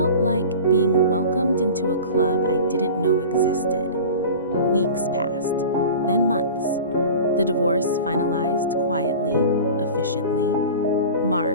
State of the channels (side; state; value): both; inverted; correlation -0.36